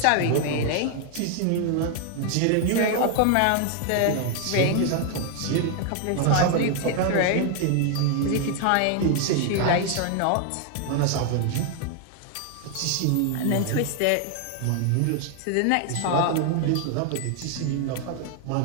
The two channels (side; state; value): both; different; correlation 0.00